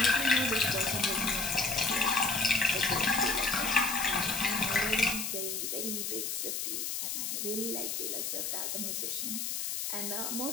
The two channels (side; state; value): left; noise; hiss, 2 dB below the sound